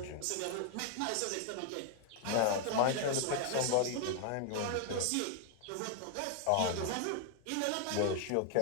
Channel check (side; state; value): both; different; correlation 0.00